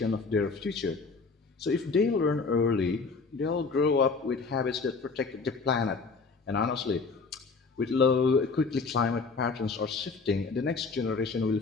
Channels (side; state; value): right; quieter; 4.4 dB